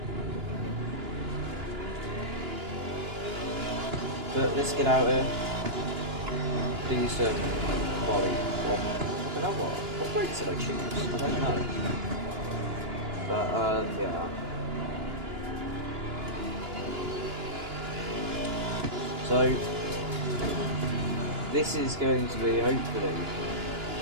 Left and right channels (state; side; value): late; left; 2.9 ms